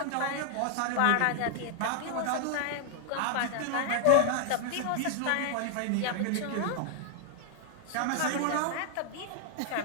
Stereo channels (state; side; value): different; both; correlation 0.00